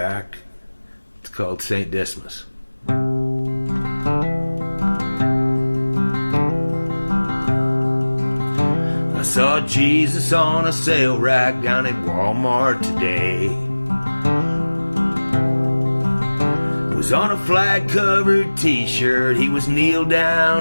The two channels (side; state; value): both; inverted; correlation -1.00